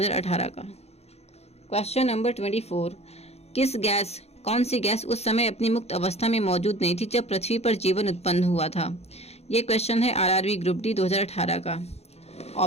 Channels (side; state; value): right; late; 0.31 ms